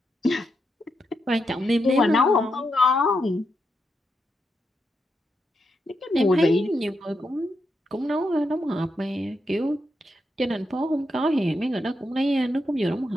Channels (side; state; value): both; normal; correlation 0.83